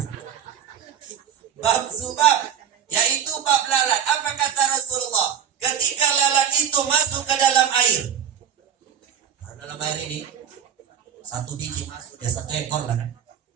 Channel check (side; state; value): left; quieter; 8.6 dB